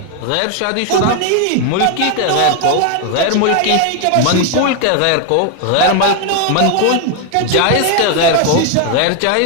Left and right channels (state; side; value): different; both; correlation 0.01